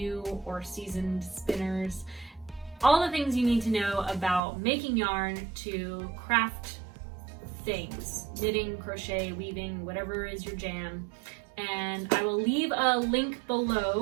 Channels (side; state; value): left; drops out; at 4.4 s